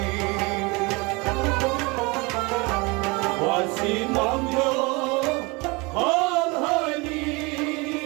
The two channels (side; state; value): left; quieter; 26.4 dB